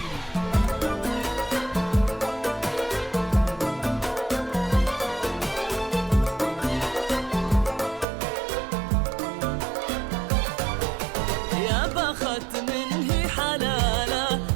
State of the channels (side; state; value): left; drops out; at 8.1 s